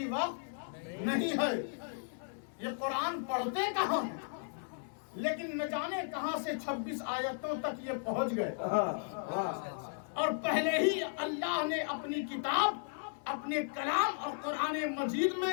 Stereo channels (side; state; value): right; silent; 54 dB below the other